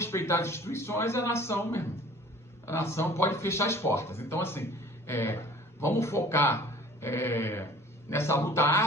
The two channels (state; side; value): normal; both; correlation 0.48